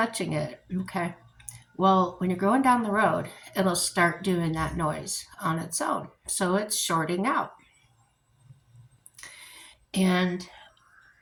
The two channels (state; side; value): identical; both; correlation 1.00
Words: it. Okay. Well, when you're going down the road, it'll start doing that noise on its own. So it's shorting out. And